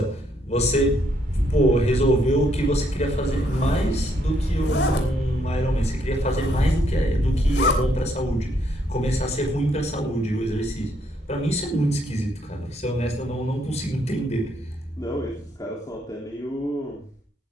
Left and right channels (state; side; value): normal; both; correlation 0.72